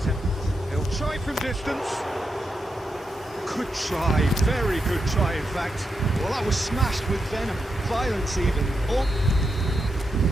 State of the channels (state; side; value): normal; both; correlation 0.85